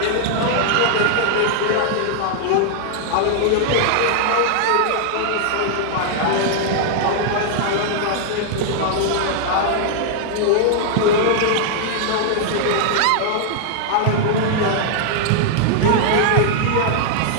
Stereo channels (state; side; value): different; both; correlation -0.01